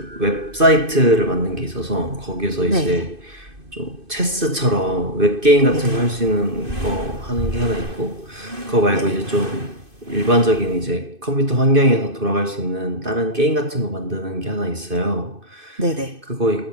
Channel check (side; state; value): left; late; 2.5 ms